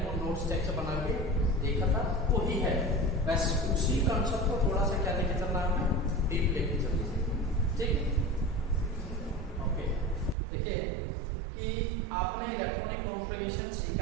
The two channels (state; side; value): drops out; left; at 10.4 s